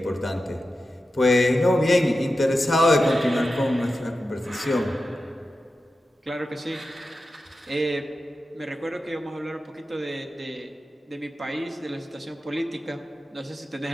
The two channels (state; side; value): normal; both; correlation 0.92